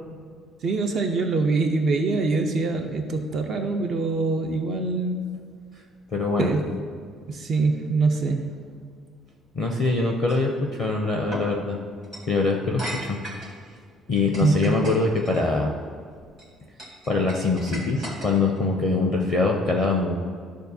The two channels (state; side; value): normal; both; correlation 0.58